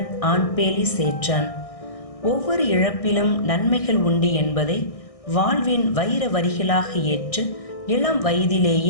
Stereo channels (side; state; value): right; late; 1.6 ms